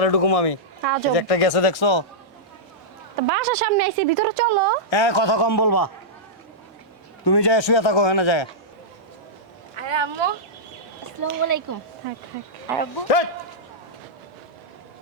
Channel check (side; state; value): both; normal; correlation -0.11